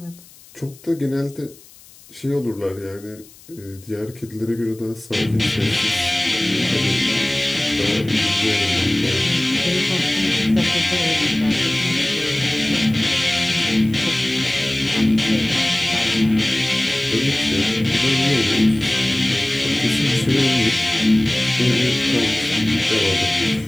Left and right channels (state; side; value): noise; left; hiss, 23 dB below the sound